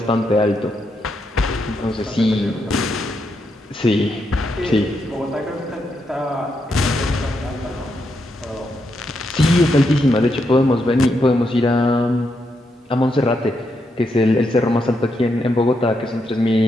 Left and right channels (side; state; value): both; normal; correlation 0.81